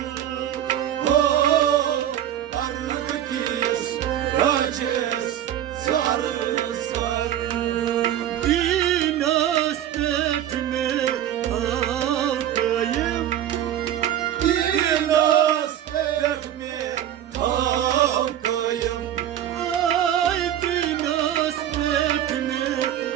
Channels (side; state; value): left; quieter; 11.1 dB